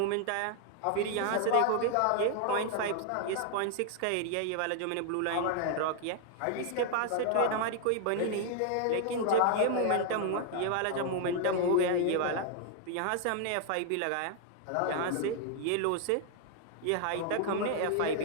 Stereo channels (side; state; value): both; different; correlation 0.00